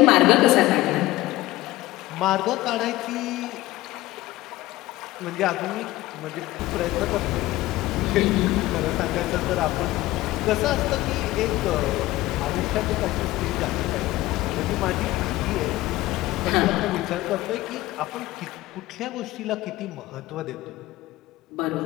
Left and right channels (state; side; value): quieter; right; 17.6 dB